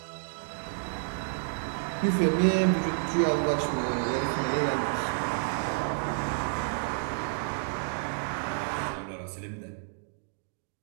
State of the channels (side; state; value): left; silent; digital silence